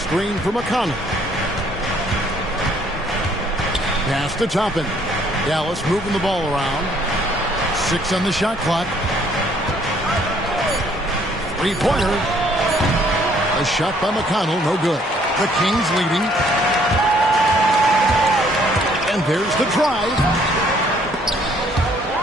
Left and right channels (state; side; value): normal; both; correlation 0.63